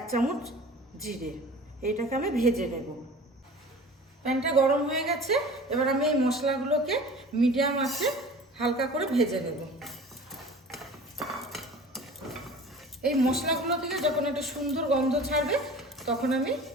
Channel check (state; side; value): normal; both; correlation 0.41